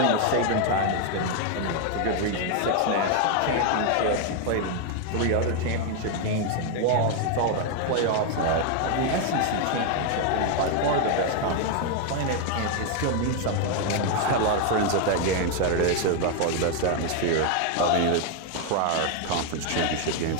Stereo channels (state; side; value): different; both; correlation 0.01